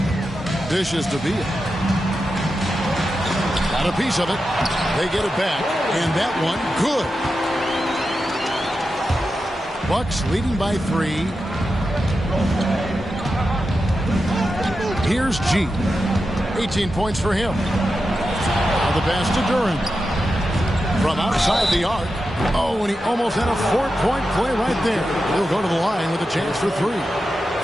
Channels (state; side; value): normal; both; correlation 0.90